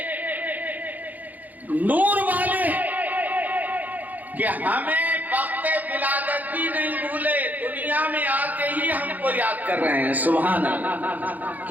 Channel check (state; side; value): late; left; 0.081 ms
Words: نور والے کہ ہمیں وقت ولادت بھی نہیں بھولے، دنیا میں آتے ہی ہم کو یاد کر رہے ہیں. سبحان اللہ.